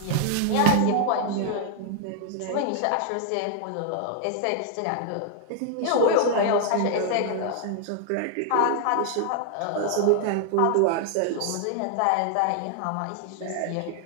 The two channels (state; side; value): different; both; correlation 0.00